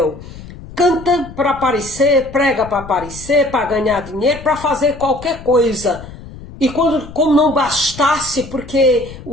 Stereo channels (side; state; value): left; noise; rumble, 15 dB below the sound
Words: Canta para aparecer, prega para aparecer, para ganhar dinheiro, para fazer qualquer coisa. E como não bastasse, porque